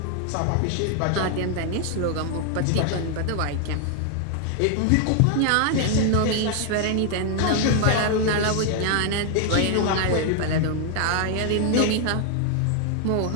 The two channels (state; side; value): different; both; correlation 0.00